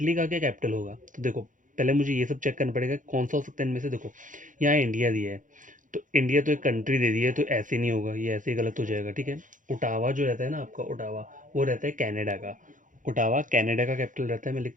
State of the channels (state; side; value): late; left; 0.38 ms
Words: का क्या कैपिटल होगा? तो देखो पहले मुझे ये सब चेक करना पड़ेगा कौन सा हो सकता है इनमें से। देखो यहाँ इंडिया दिया है, तो इंडिया तो एक कंट्री दे दी है, तो ऐसे नहीं होगा, ये ऐसे ही गलत हो जाएगा। ठीक है, ओटावा जो रहता है ना आपका, ओटावा वो रहता है कनाडा का। ओटावा कनाडा का कैपिटल रहता है। मैं